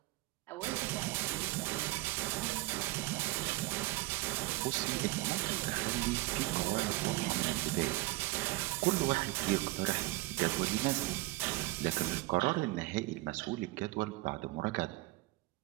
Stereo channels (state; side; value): quieter; left; 21.2 dB